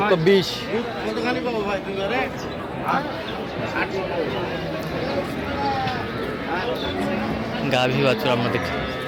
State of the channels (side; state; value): both; identical; correlation 1.00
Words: কতখানি পাবো ভাই? দুইবারে গাভী বাছুর আমরা দেখছি।